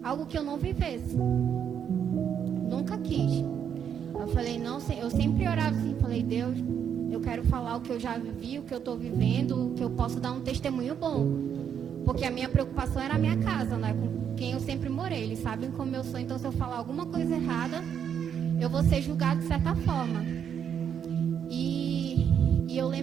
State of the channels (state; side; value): quieter; left; 8.3 dB